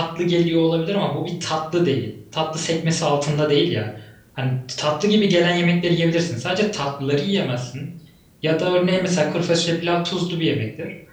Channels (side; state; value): both; identical; correlation 1.00